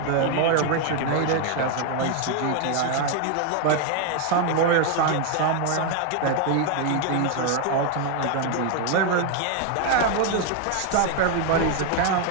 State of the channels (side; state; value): both; different; correlation 0.01